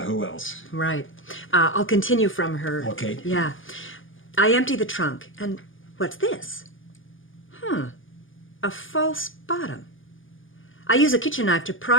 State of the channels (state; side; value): late; right; 0.58 ms